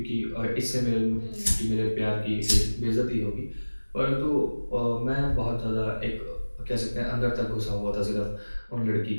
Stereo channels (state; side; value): inverted; both; correlation -1.00